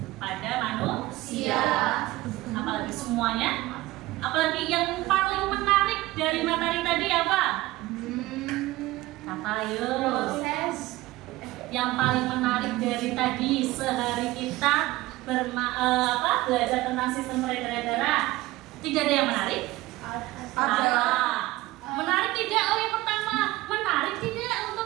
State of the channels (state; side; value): quieter; left; 18.5 dB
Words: pada manusia. Apalagi semuanya? Apalagi yang paling menarik dari materi tadi apa? Apa yuk? Yang paling menarik dari tadi sehari kita belajar tentang sistem peredaran darah. Tidak ada yang menarik? Ada. Menarik tidak? Oh, yang pertama, menarik tidak